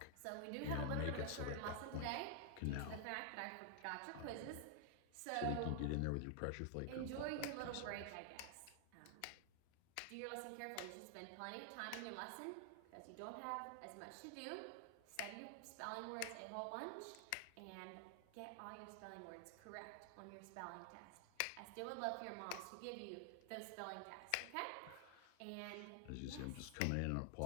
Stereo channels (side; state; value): both; different; correlation 0.00